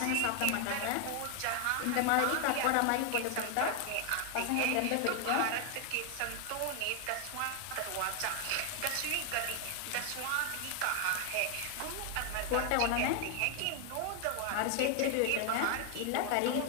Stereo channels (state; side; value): different; both; correlation 0.00